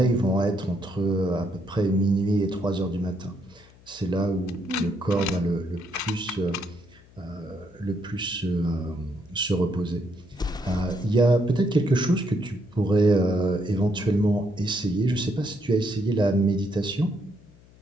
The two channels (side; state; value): left; noise; hum, 26 dB below the sound